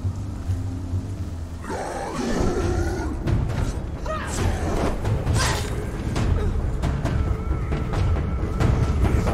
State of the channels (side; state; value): both; identical; correlation 1.00